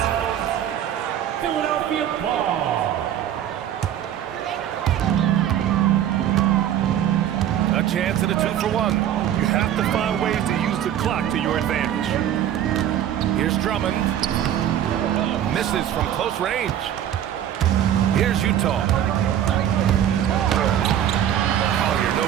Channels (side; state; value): left; quieter; 10.7 dB